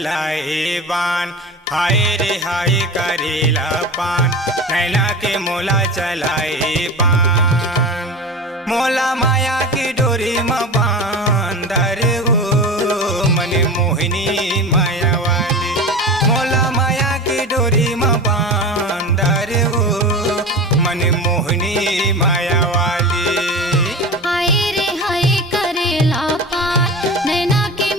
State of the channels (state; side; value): normal; both; correlation 0.30